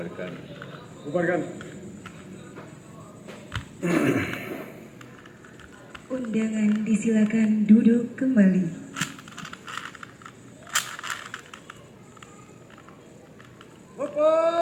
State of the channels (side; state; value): both; identical; correlation 1.00